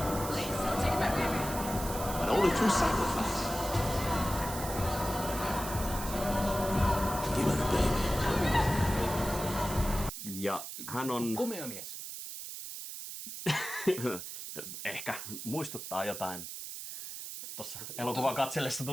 Please don't take my baby. But only through sacrifice. Give me the baby. Ja hän on, Komea mies. ehkä muistuttaa jotain. Tuossa elokuvan katsellessa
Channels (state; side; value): noise; right; hiss, 8 dB below the sound